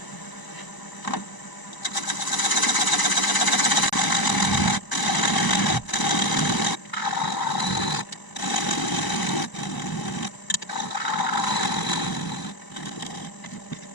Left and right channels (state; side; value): late; right; 1.0 ms